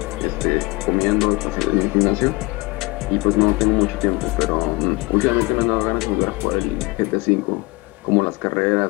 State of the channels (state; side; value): quieter; right; 24.3 dB